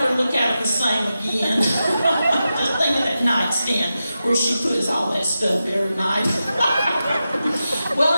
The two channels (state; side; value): inverted; both; correlation -0.91